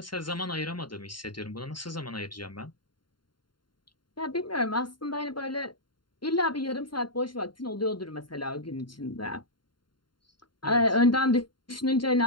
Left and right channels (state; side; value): late; right; 0.72 ms